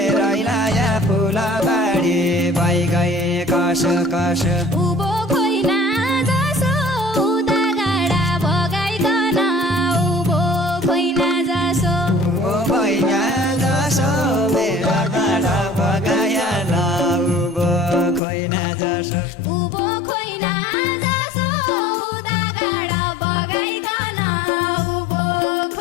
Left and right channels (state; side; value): drops out; right; at 18.2 s